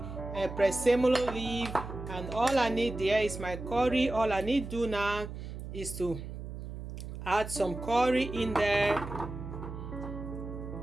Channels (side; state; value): right; noise; hum, 9 dB below the sound